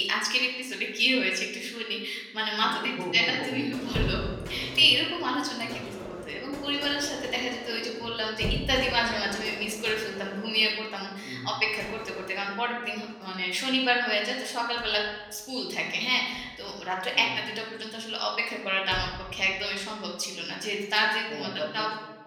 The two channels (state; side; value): identical; both; correlation 1.00